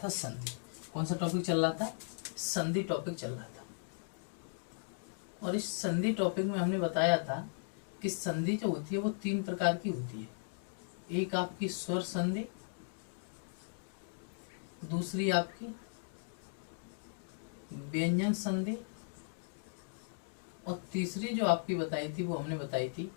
था संधि। कौन सा टॉपिक चल रहा था? संधि टॉपिक चल रहा था। और इस संधि टॉपिक में हमने बताया था कि संधि जो होती है वो 3 प्रकार की होती है। एक आपकी स्वर संधि, दूसरी आपकी व्यंजन संधि और तीसरी जो आपकी बताई थी वो हमने बताई थी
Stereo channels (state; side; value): silent; right; digital silence